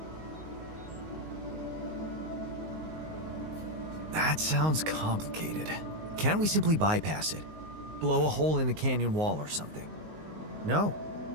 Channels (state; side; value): late; left; 19 ms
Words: That sounds complicated. Can't we simply bypass it? Blow a hole in the canyon wall or something? No,